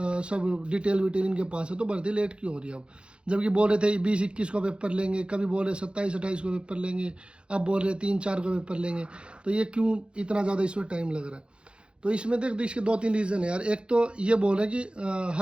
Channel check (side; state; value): left; late; 0.056 ms